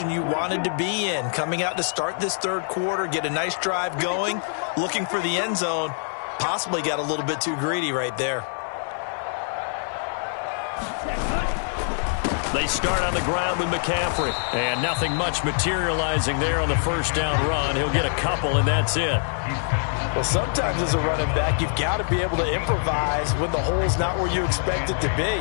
you wanted to be in. Coming out to start this 3rd quarter, get a nice drive going, looking for the end zone. Possibly got a little bit too greedy right there. They start on the ground with McCaffrey. And nothing much materializing there on the first down run. He'll get a couple, and that's it. Well, sometimes as a running back, you've got to be able to improvise when the hole's not where you expect it to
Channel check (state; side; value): silent; right; 60 dB below the other